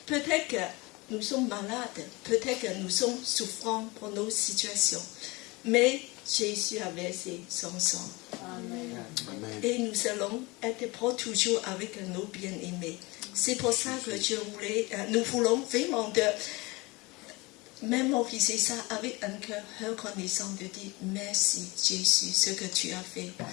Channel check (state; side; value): quieter; right; 24.2 dB